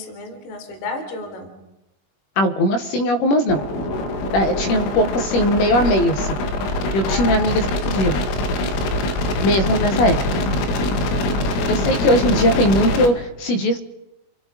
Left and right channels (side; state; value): right; late; 21 ms